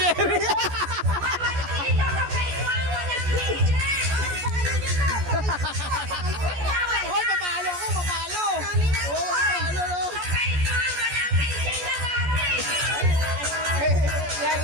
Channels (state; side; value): late; left; 14 ms